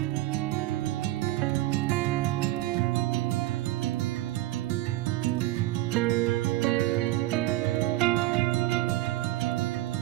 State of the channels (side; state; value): left; quieter; 16.6 dB